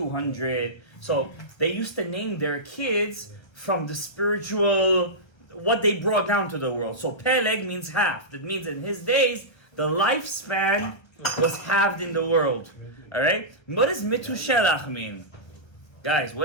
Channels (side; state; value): right; late; 1.3 ms